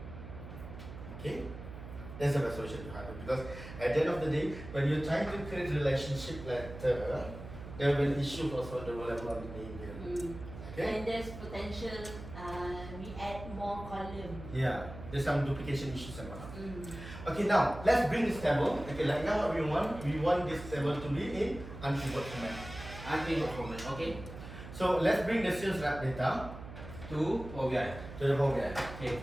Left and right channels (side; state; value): right; noise; hum, 12 dB below the sound